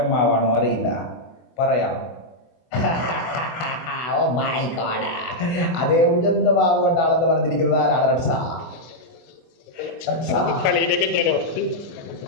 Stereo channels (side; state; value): right; late; 24 ms